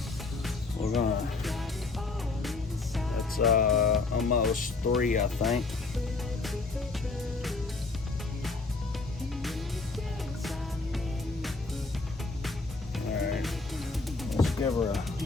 we're gonna, that's almost 3, I think. Alright, let's give her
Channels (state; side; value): quieter; right; 3.8 dB